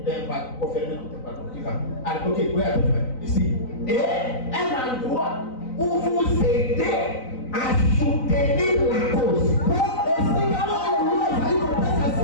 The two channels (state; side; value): late; right; 3.9 ms